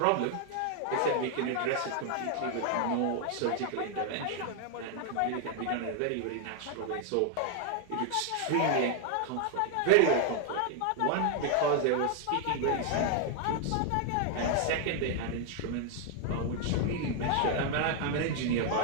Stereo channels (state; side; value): different; both; correlation 0.00